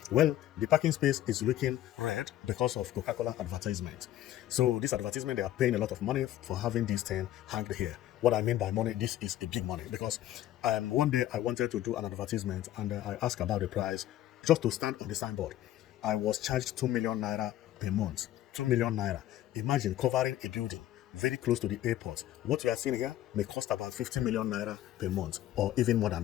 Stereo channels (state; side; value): quieter; right; 13.2 dB